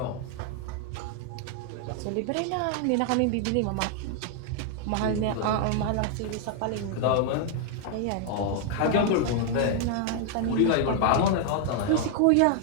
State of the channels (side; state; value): both; different; correlation 0.00